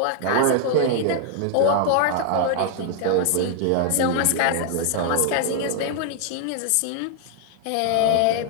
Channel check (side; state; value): both; different; correlation 0.00